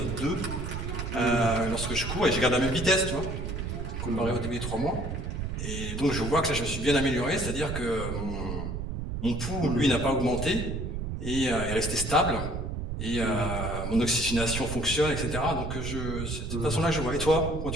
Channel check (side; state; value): right; noise; rumble, 4 dB below the sound